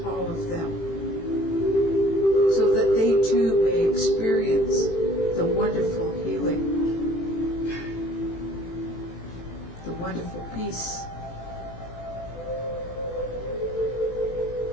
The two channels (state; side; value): late; right; 18 ms